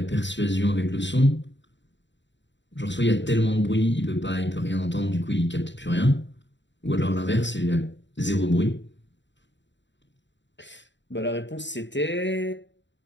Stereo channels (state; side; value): late; right; 0.53 ms